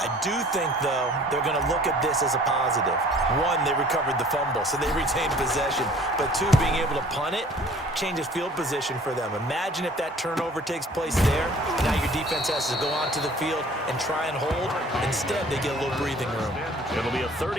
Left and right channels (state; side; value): normal; both; correlation 0.51